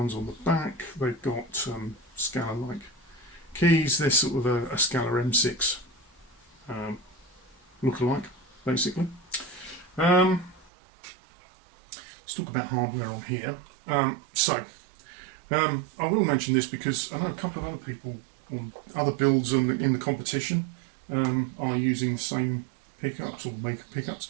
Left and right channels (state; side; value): drops out; left; at 10.7 s